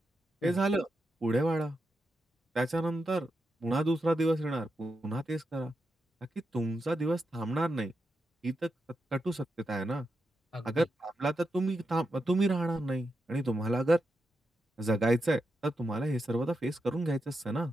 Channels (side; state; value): both; normal; correlation 0.87